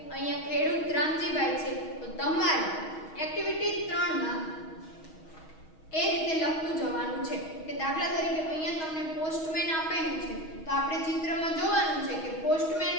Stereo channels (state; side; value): late; right; 6.3 ms